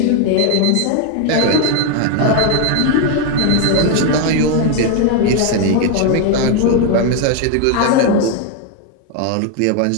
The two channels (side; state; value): both; different; correlation 0.01